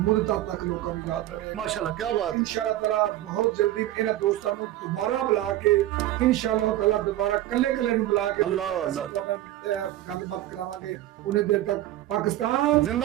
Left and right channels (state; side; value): quieter; left; 14.3 dB